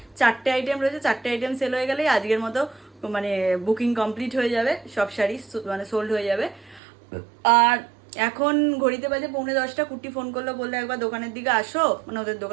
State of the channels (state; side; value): drops out; left; at 6.8 s